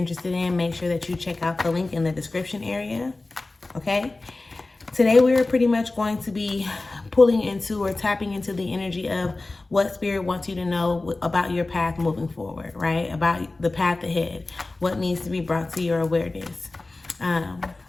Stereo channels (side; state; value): right; quieter; 3.2 dB